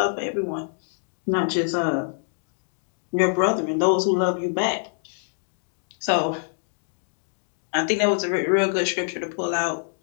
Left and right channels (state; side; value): silent; right; digital silence